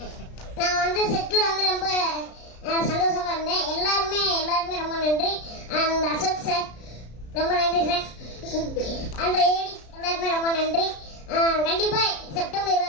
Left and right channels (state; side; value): late; right; 33 ms